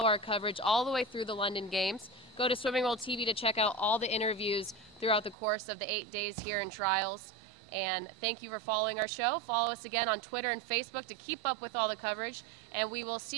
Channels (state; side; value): drops out; left; at 5.4 s